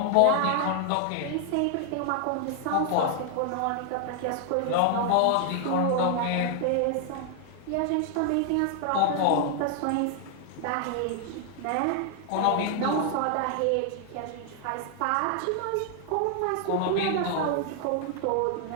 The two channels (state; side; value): different; both; correlation 0.00